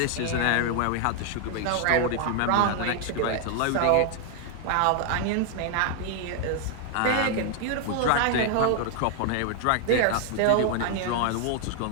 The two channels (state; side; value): different; both; correlation 0.00